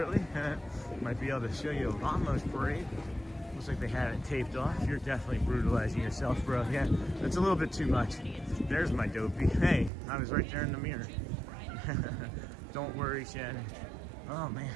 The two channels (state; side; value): drops out; left; at 9.9 s